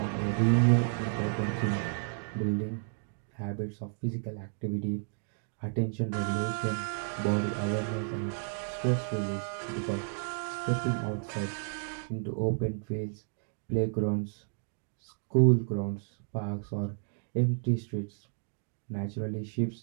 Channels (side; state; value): left; silent; 56 dB below the other